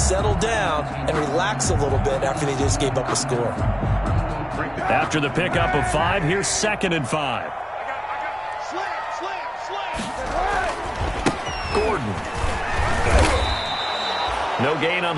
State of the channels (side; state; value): both; identical; correlation 1.00